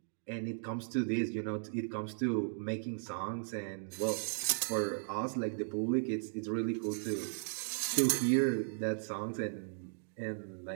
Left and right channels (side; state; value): left; silent; digital silence